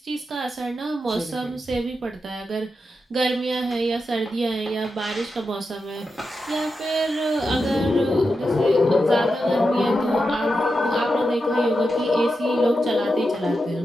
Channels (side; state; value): both; normal; correlation 0.88